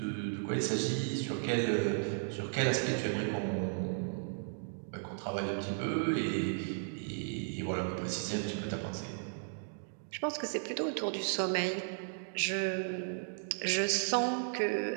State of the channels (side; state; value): left; silent; digital silence